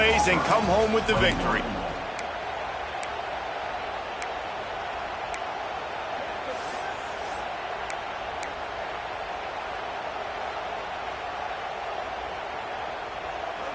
and come home with the victory.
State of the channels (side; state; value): both; identical; correlation 1.00